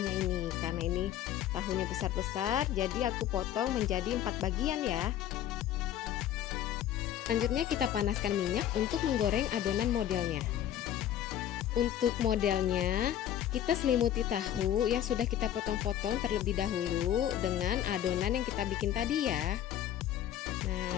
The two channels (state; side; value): quieter; right; 11.3 dB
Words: ini. Karena ini tahunya besar-besar, jadi aku potong menjadi 4 bagian ya. Selanjutnya kita panaskan minyak untuk menggoreng adonan modelnya. Untuk modelnya, kita selimuti tahu yang sudah kita potong-potong terlebih dahulu dengan adonan yang kita bikin tadi ya. Nah,